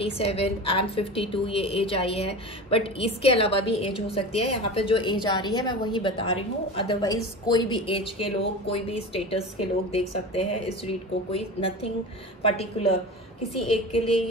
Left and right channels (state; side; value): normal; both; correlation 0.31